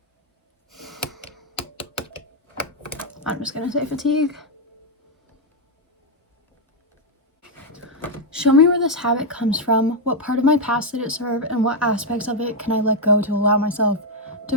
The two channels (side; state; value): both; normal; correlation 0.00